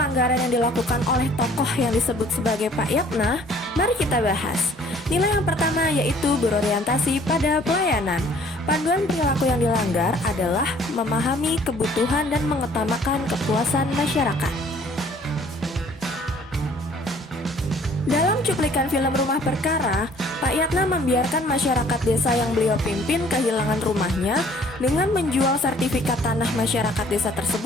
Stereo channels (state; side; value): normal; both; correlation 0.56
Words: yang dilakukan oleh tokoh yang disebut sebagai Pak Yatna? Mari kita bahas. Nilai yang pertama yaitu berorientasi pada pelayanan. Panduan perilaku yang dilanggar adalah memahami kebutuhan dan mengutamakan kepuasan masyarakat. Dalam cuplikan film Rumah Perkara, Pak Yatna membiarkan masyarakat desa yang beliau pimpin kehilangan rumahnya dengan menjual sertifikat tanah masyarakat desa